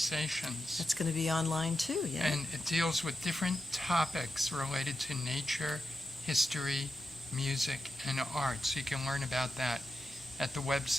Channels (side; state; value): both; normal; correlation 0.88